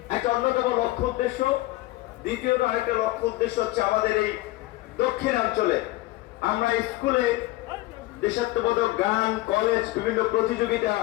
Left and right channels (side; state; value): right; quieter; 18.7 dB